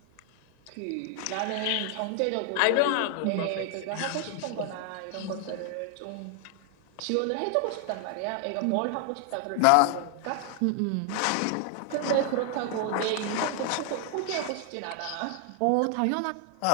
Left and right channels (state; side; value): different; both; correlation 0.00